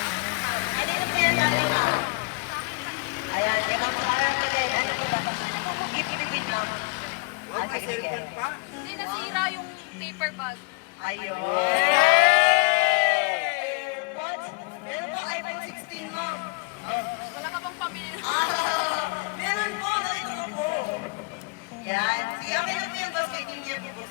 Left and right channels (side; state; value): right; quieter; 29.8 dB